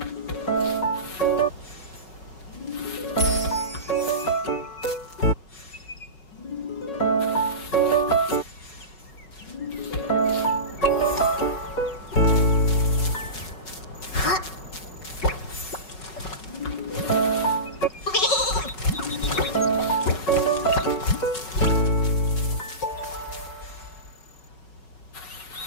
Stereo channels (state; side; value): late; right; 5.4 ms